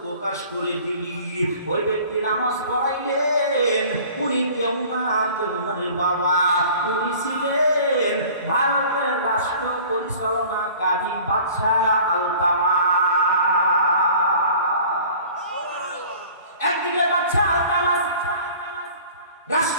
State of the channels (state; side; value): inverted; both; correlation -0.47